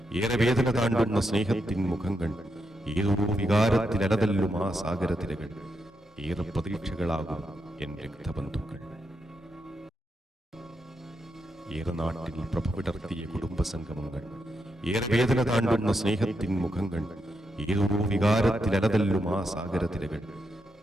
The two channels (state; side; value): normal; both; correlation 0.83